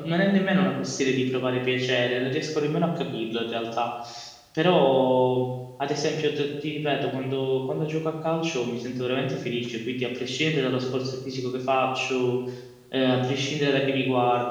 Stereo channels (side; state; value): both; identical; correlation 1.00